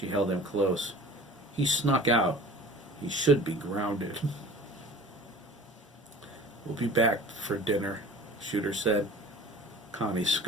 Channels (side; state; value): both; normal; correlation 0.43